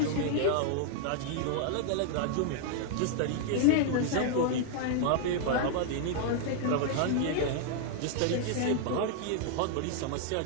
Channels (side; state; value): both; different; correlation 0.00